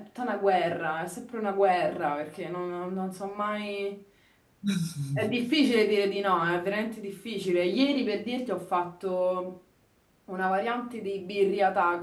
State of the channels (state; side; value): identical; both; correlation 1.00